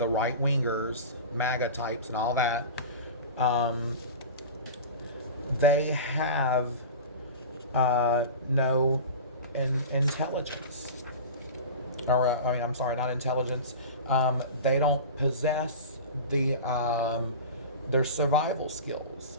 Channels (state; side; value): inverted; both; correlation -0.31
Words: right-wingers, MAGA types and all that, they have no intelligence. Or, I'm sorry, not intelligence. They don't possess their survival skills.